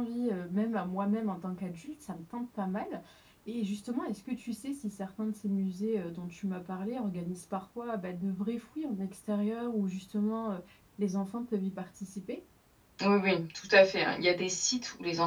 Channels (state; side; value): identical; both; correlation 1.00